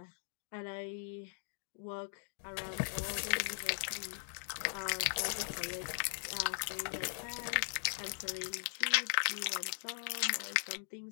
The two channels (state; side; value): silent; right; digital silence